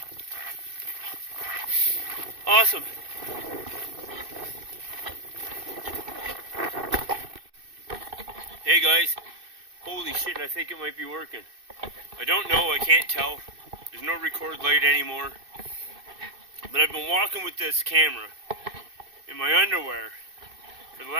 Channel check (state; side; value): late; left; 2.6 ms